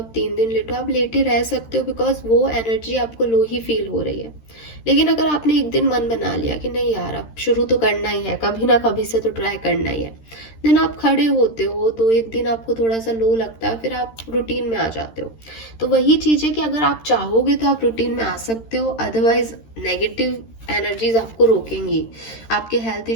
3 दिन लेटो, आप लेटे रह सकते हो, बिकॉज वो एनर्जी आपको लो ही फील हो रही है। लेकिन अगर आपने 1 दिन मन बना लिया कि नहीं यार अब शुरू तो करना ही है, कभी ना कभी से तो ट्राई करना ही है, देन आप खड़े होते हो, तो 1 दिन आपको थोड़ा सा लो लगता है, फिर आप रूटीन में आ जाते हो। तो वही चीज है कि अगर आप चाहोगे तो आप रूटीन में आ सकते हो, अदरवाइज नेगेटिव एनर्जीज आपको रोकेंगी, आपके हेल्थ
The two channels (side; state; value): right; late; 13 ms